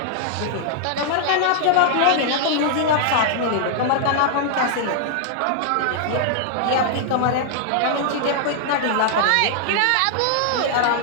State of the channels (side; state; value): both; different; correlation -0.01